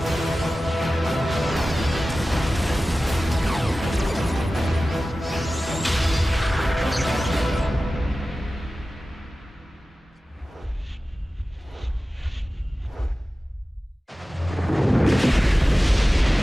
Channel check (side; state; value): both; normal; correlation 0.96